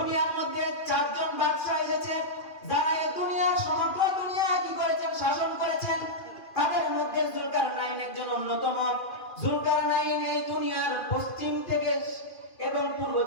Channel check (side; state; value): right; late; 2.4 ms